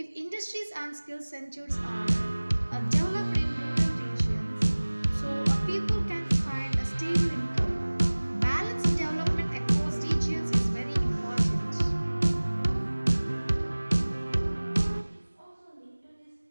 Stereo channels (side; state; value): both; inverted; correlation -1.00